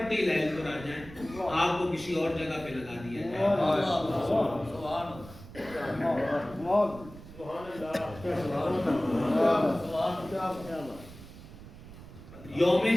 ہی لہل پر آ جائیں، آپ کو کسی اور جگہ پہ لگا دیا جائے۔ یوم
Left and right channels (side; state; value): right; noise; rumble, 16 dB below the sound